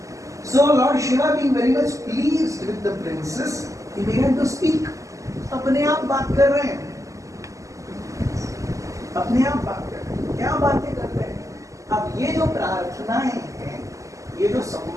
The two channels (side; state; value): left; late; 0.16 ms